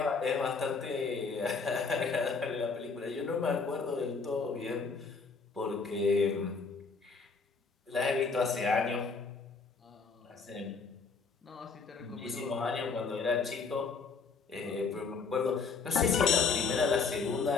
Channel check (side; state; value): right; quieter; 4.8 dB